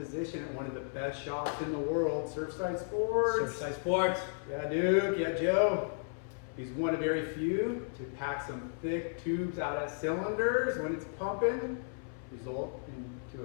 at one of the best shops in the world, Surfside Sports. Surfside Sports. Yeah, Duke. Yeah, Joe. He's one of very few to pack some thick tubes out of cylinders when it's pumping, result into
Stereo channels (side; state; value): right; silent; 55 dB below the other